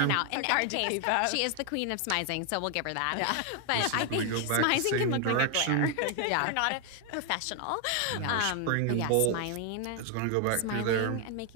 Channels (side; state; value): both; different; correlation 0.00